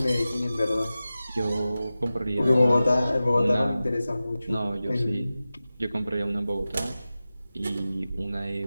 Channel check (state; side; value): inverted; both; correlation -0.95